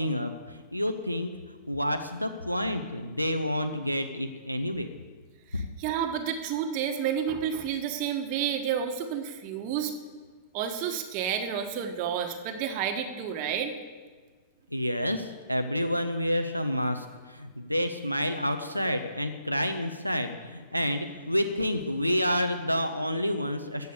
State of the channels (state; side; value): inverted; both; correlation -0.62